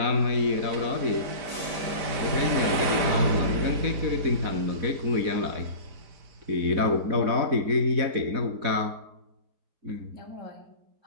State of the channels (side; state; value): left; late; 4.1 ms